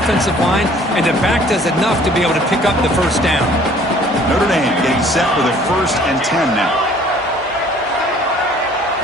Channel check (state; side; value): normal; both; correlation 0.54